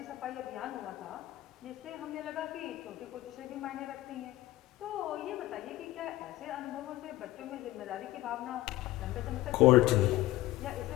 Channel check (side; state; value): right; quieter; 16.7 dB